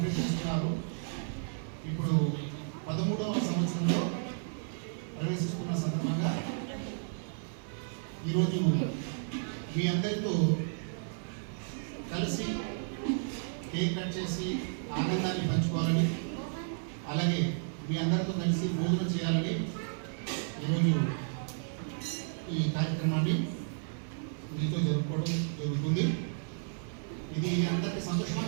చేస్తున్నారు. ఇప్పుడు 13వ సంవత్సరంలో ప్రవేశిస్తున్న సందర్భంగా ఈరోజు మీ అందరితో కలిసి కేక్ కట్ చేసి ఆనందాన్ని పంచుకోవాలని, అలాగే మీ అందరితో కలిసి భోజనం చేయాలని ఈరోజు ఈ కార్యక్రమాన్ని మీతో జరుపుకోవడం జరుగుతుంది. ఇది అందరికీ సంతోషమా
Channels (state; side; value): silent; left; 56 dB below the other